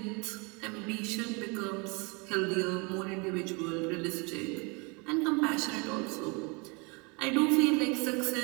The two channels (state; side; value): quieter; left; 30.3 dB